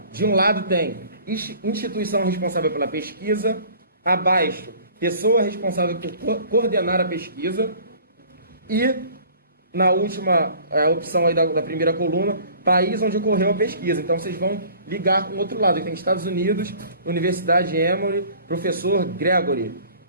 De um lado tem instituição responsável pela pesquisa. Abaixo, pessoa responsável por coordenar a pesquisa. E na última opção aí da primeira coluna, país onde ocorreu a pesquisa. Então vocês vão ligar com o outro lado. Tem Estados Unidos, Universidade Emory, professor Gregory.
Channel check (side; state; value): both; inverted; correlation -0.49